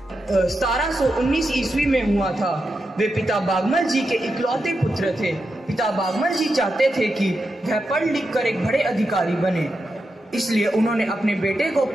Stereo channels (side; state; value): both; normal; correlation 0.87